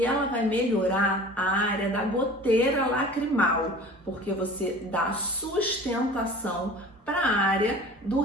ela vai melhorar a área da goteira lacrimal, porque você dá sustentação para a área do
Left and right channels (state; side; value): normal; both; correlation 0.42